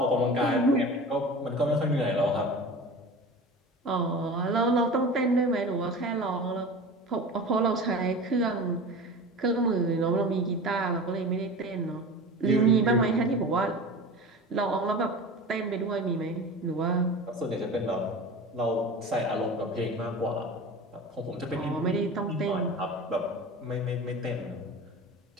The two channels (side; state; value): both; normal; correlation 0.34